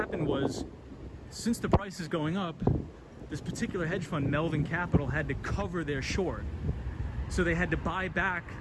was, since the price is going up, this particular hedge fund, Melvin Capital, had to cover their short. So they had to buy back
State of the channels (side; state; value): both; identical; correlation 1.00